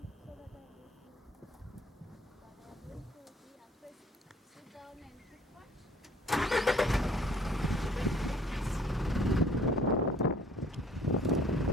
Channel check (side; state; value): both; normal; correlation 0.56